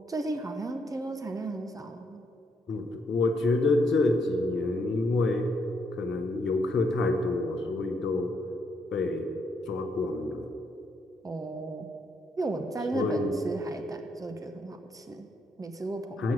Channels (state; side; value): normal; both; correlation 0.75